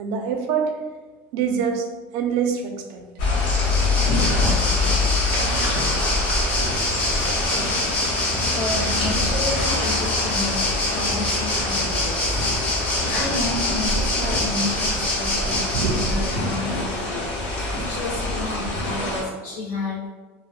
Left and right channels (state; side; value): normal; both; correlation 0.26